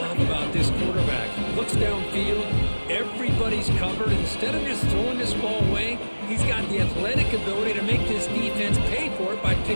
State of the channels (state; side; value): inverted; both; correlation -1.00